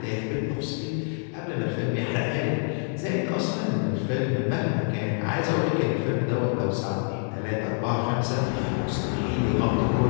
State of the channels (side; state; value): right; silent; 56 dB below the other